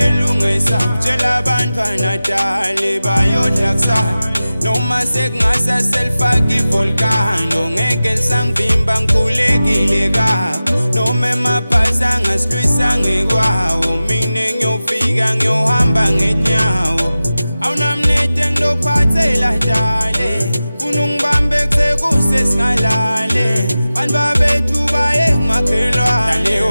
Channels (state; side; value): inverted; both; correlation -0.96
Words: kutshela abantwana dale bayodla kusasa noma sekungasaselfaka ivolcano ngeke lisangivimba ngikhulekile kakho noma emabhasi angasilwisa ngekwawo mina ngiyofika ngiyohamba ngenyawo awunamnede ngilophathela dale funa ungibambe kusekuse singalale bantu babethu baye ngumakhelwane dale